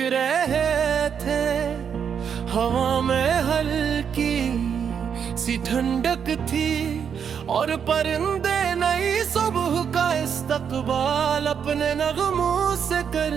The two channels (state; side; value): quieter; left; 7.4 dB